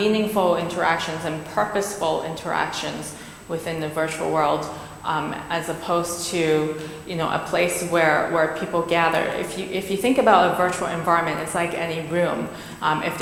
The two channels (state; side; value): identical; both; correlation 1.00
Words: interactions and purposeful interactions within the virtual world, as opposed to, you know, a place where people gather. If you think about a virtual environment, it's like any room. If